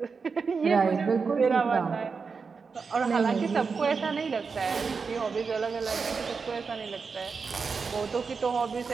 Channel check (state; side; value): quieter; left; 5.1 dB